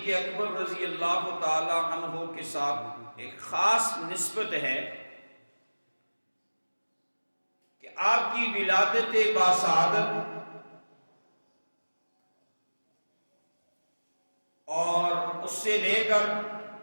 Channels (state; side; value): inverted; both; correlation -1.00